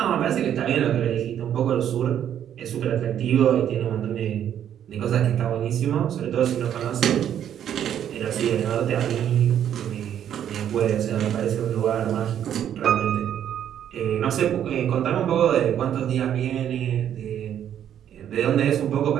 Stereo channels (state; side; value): quieter; left; 9.9 dB